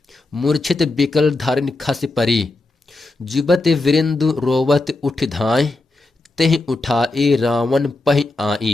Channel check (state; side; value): quieter; right; 3.0 dB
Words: मूर्छित बिकल धारिन खस परी जुबत वृंद रोवत उठ धाय तेह उठाए रावण पह